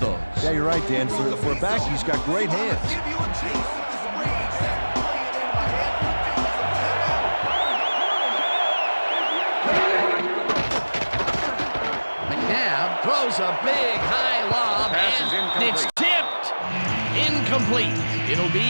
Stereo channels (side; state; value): both; inverted; correlation -1.00